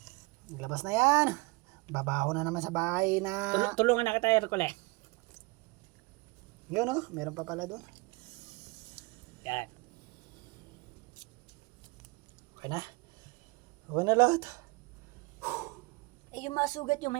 Nilabas na yan. Babaho na naman sa bahay na... Tulungan na kita, Hercule. Yun meron pa pala doon. Yan. Okay na. Okay na lahat. Yung mga sugat may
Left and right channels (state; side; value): quieter; left; 26.1 dB